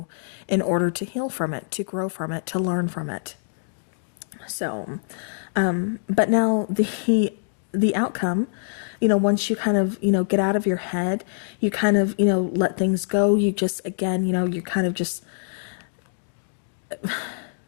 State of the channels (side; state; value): right; silent; digital silence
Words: in order to heal from it, to grow from it, to learn from it. So, but now the outcome, once you kind of, get out of your head, you kind of, let things go. You just, again, you kind of just,